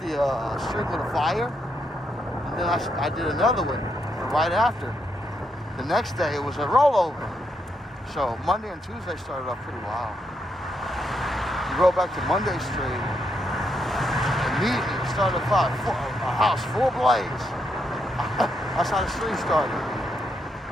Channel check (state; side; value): normal; both; correlation 0.79